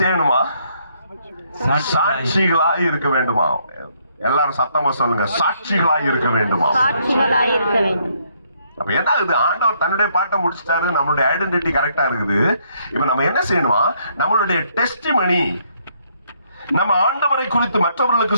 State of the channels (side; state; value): both; inverted; correlation -0.70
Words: சாட்சிகளாய் இருக்க வேண்டுமா? எல்லாரும் சத்தமா சொல்லுங்க, சாட்சிகளாய் இருக்க வேண்டுமா? அப்ப என்ன ஆகுது? ஆண்டவர் தன்னுடைய பாட்டை முடிச்சிட்டாரு, நம்மளுடைய ஐடென்டிட்டி கரெக்டா இருக்குது. இப்ப நம்ம என்ன செய்யணுமா? நம்மளுடைய டெஸ்டிமனி, நம்ம ஆண்டவரை குறித்து மற்றவர்களுக்கு